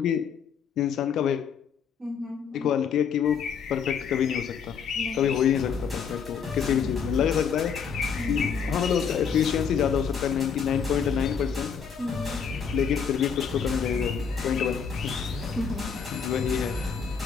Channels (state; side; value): quieter; right; 6.8 dB